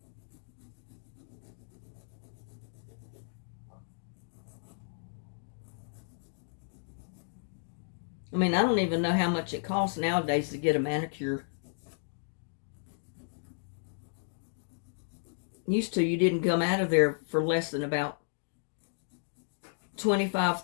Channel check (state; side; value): silent; right; digital silence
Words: I mean, I don't even know how much it costs nowadays to get a manicure. Used to, you didn't come out of there for less than about $25,